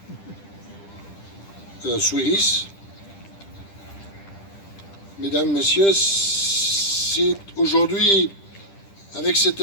Souiris, mesdames, messieurs, c'est aujourd'hui, avec cet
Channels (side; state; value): right; late; 10 ms